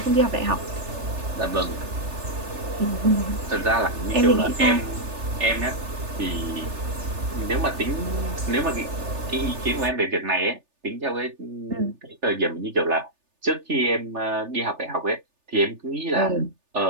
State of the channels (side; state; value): left; late; 3.4 ms